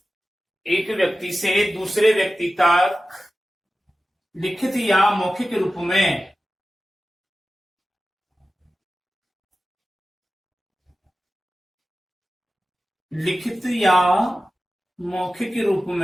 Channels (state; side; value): normal; both; correlation 0.94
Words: व्यक्ति से दूसरे व्यक्ति तक लिखित या मौखिक रूप में लिखित या मौखिक रूप